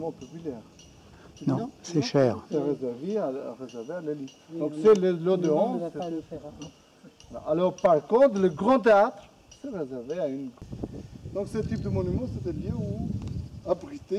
populaire. Non, c'est cher. C'est réservé à l'élite. Donc c'est l'eau de honte. Alors par contre, le grand théâtre, c'est réservé à une... Donc ce type de monument, c'est un lieu où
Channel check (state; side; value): identical; both; correlation 1.00